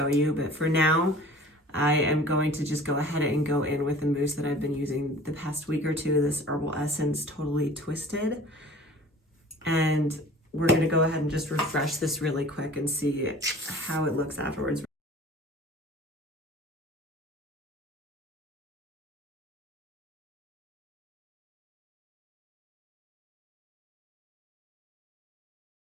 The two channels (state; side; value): normal; both; correlation 0.45